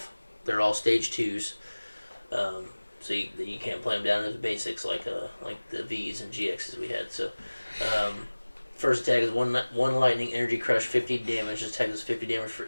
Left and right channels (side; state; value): both; inverted; correlation -1.00